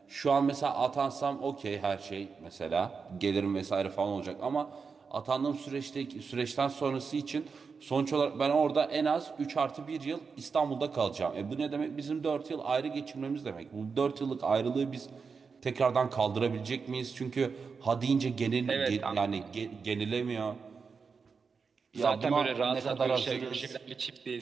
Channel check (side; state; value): left; quieter; 5.3 dB